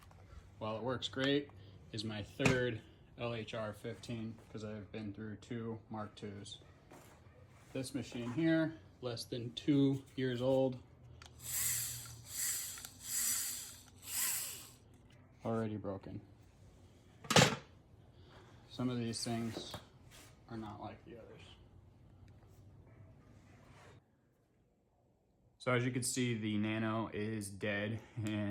while it works great, is my third LHR 15 because I've been through 2 Mark IIs. This machine here, less than 2 years old, already broken. Some of these things are not like the others. So as you can see, the Nano is dead.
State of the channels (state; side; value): identical; both; correlation 1.00